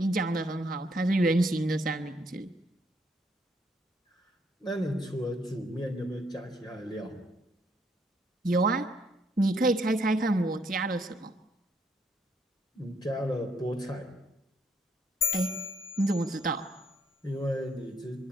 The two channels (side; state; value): both; normal; correlation 0.70